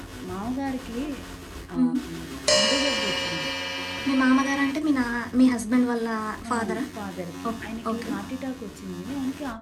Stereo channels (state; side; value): identical; both; correlation 1.00